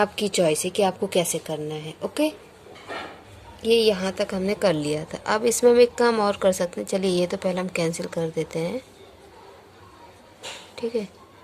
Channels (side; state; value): both; identical; correlation 1.00